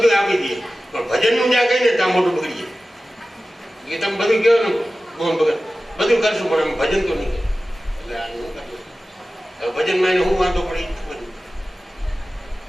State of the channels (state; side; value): normal; both; correlation 0.95